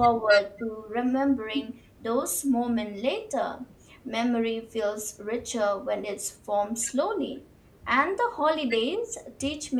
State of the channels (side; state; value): both; identical; correlation 1.00